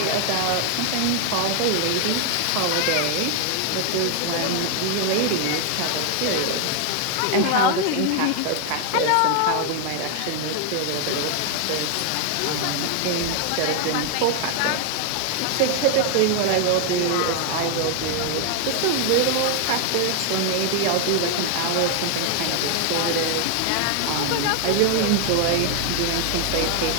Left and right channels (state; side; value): different; both; correlation 0.00